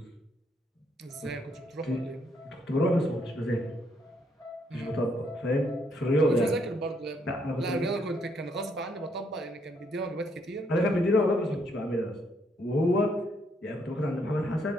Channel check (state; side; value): normal; both; correlation 0.72